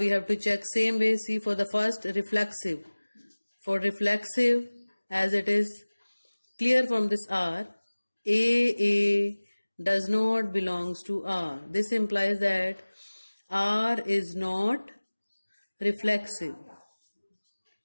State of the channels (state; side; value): inverted; both; correlation -1.00